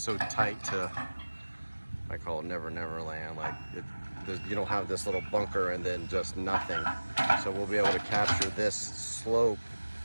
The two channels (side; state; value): both; inverted; correlation -1.00